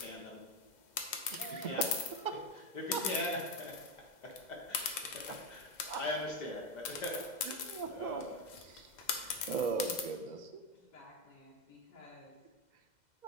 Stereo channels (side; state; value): right; late; 2.0 ms